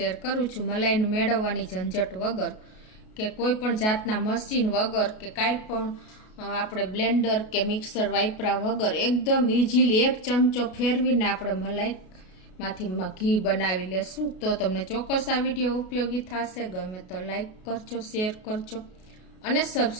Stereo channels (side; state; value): right; late; 33 ms